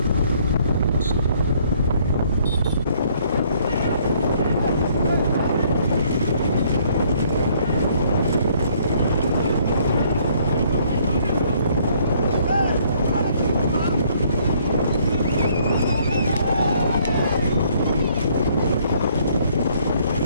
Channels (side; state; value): both; inverted; correlation -0.64